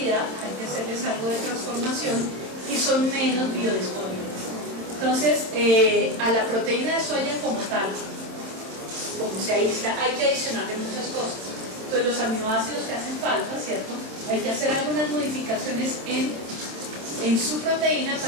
hay que hacerles algo de transformación, y son menos biodisponibles. Entonces a la proteína de soya como tal, como se aísla, hay que adicionarle muchas cosas. Entonces los aminoácidos que hacen falta, ¿cierto? Hay que hacer algunas modificaciones en en su proteína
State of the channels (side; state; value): left; late; 26 ms